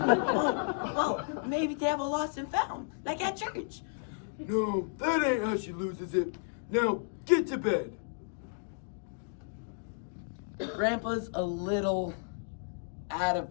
maybe they have a lost and found, like at church. No, that ain't how she loses it. Now, get to bed. Grandpa's a little out of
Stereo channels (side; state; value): right; silent; digital silence